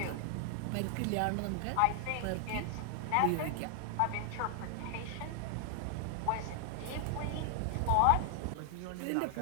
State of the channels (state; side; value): different; both; correlation 0.00